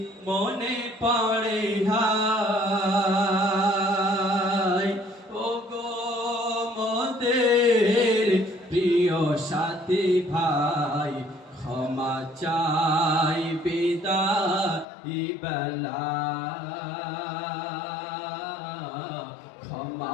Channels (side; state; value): right; drops out; at 14.9 s